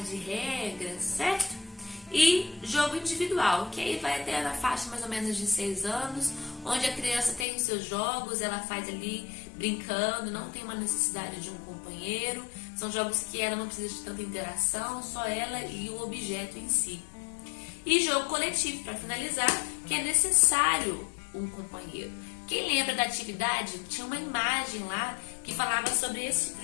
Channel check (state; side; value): drops out; right; at 7.5 s